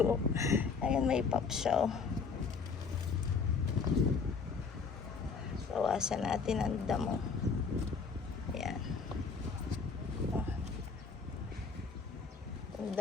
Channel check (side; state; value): right; quieter; 5.2 dB